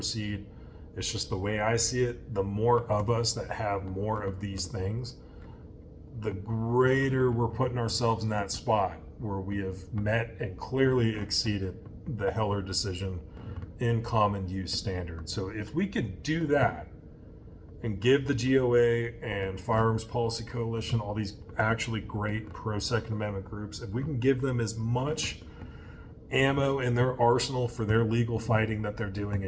It's just the way I see it. The more of us that have more of these things, the greater we're putting ourselves in that spot where we have met and clearly exceeded the Heller decision in common use standard. So if we could do that and give the GOA and Firearms Policy Coalition, all these actually great pro-Second Amendment groups, if we can give them as much ammo in their arsenal for their legal fighting that they're doing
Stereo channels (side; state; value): both; identical; correlation 1.00